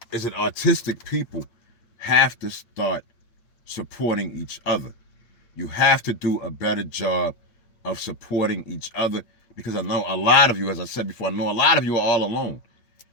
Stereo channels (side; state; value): right; late; 8.8 ms